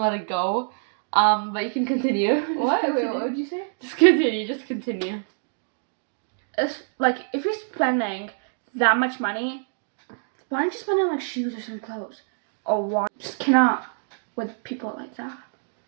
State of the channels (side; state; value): left; silent; digital silence